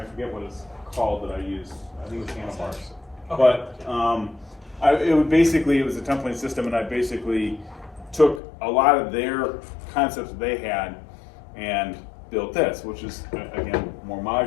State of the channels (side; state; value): right; drops out; at 8.4 s